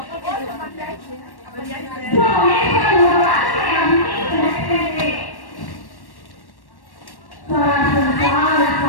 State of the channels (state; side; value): late; right; 1.1 ms